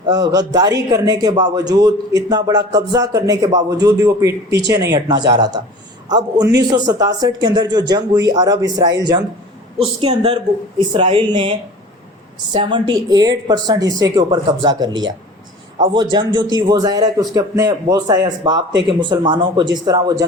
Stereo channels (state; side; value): normal; both; correlation 0.41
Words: غداری کرنے کے باوجود، اتنا بڑا قبضہ کرنے کے باوجود بھی وہ پیچھے نہیں ہٹنا چاہ رہا تھا۔ اب 1967 کے اندر جو جنگ ہوئی، عرب اسرائیل جنگ، اس کے اندر اسرائیل نے 78% حصے کے اوپر قبضہ کر لیا۔ اب وہ جنگ جو تھی وہ ظاہر ہے کہ اس کے اپنے بہت سارے اسباب تھے کہ مسلمانوں کو جس طرح وہ